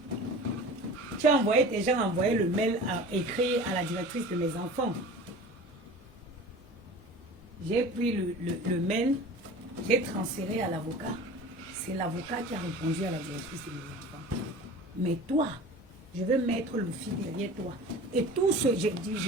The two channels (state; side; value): normal; both; correlation 0.39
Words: Tu as envoyé, tes gens ont envoyé le mail écrit à la directrice de mes enfants. J'ai pris le mail, j'ai transféré à l'avocat. C'est l'avocat qui a répondu à la directrice de mes enfants. Mais toi, je vais mettre le fil derrière toi. Et tout ce que j'ai dit,